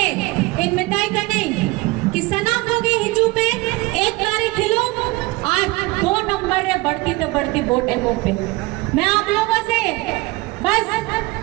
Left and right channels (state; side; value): quieter; left; 22.6 dB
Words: इन मिठाई करने कि सनम हो गए हिजू पे 1 तारीख खिलो और 2 नंबर रे बढ़ती तो बढ़ती वोट एमओ पे। मैं आप लोगों से बस